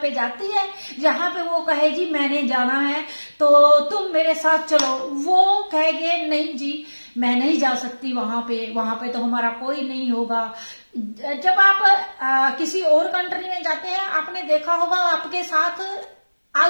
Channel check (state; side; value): inverted; both; correlation -1.00